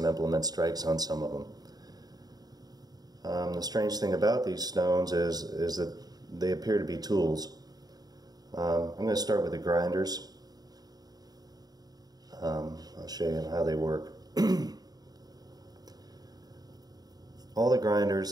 implement strikes on some of them. The strange thing about these stones is that they appear to be tools. I'm going to start with the grinders. I'll show you how they work. All the grinders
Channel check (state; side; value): late; left; 0.19 ms